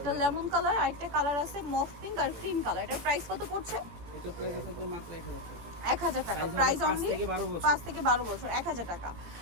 লেমন কালার আর একটা কালার আছে মফ পিঙ্ক আর ক্রিম কালার। এটার প্রাইস কত পড়ছে? এটা প্রাইস থাকবে মাত্র 1000 টাকা। 1000 টাকা। প্রাইস অনলি 5 থেকে 12 বছর, 1000 টাকা।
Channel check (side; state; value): left; late; 18 ms